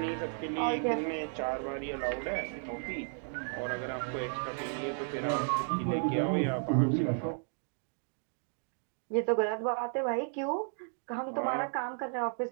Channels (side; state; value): left; silent; 55 dB below the other